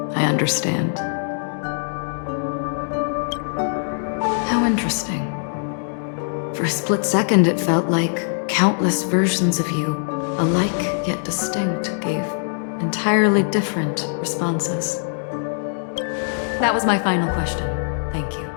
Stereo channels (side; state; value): right; silent; digital silence